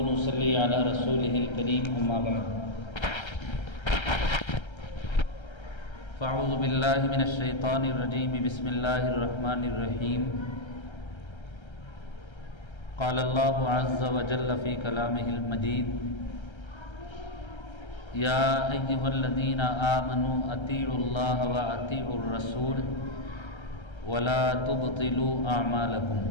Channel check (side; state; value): right; late; 1.3 ms